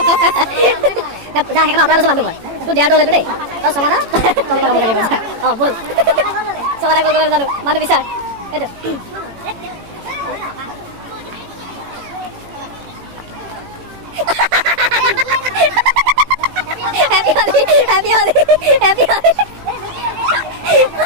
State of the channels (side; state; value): left; late; 18 ms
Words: যা সেইকাৰণে আপোনাৰ লৈছোঁ মানুহ মই তোৰ দেয়াৰটো হ'লেতো দেই তই সমাদা তলত লগাবগৈ লাগিব যা অঁ ব'ল সমাদা কৰিবলৈ জানো মানুহ বিচাৰ এইটো Happy Holi, Happy Holi, Happy Holi.